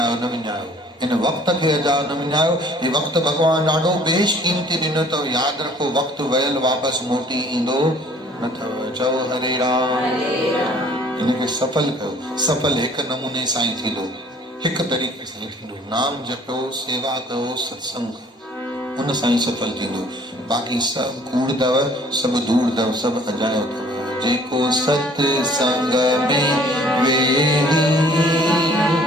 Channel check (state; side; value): normal; both; correlation 0.55